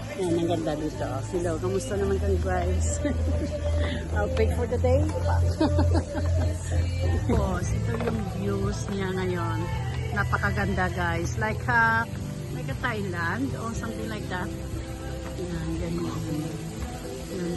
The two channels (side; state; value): both; identical; correlation 1.00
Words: Yan, ang ganda dito. Hello, kamusta naman kami guys? Outfit for the day. Ito yung views niya ngayon. Napakaganda guys. Like a Thailand or something like that. Yan, ganyan. Yan,